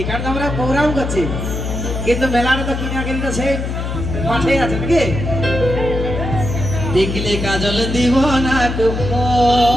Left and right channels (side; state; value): left; noise; hum, 3 dB below the sound